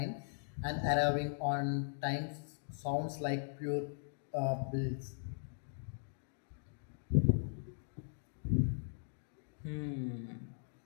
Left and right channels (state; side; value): silent; right; digital silence